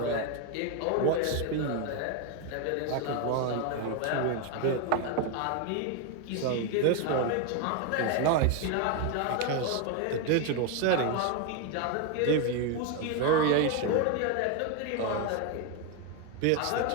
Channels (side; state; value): both; different; correlation 0.01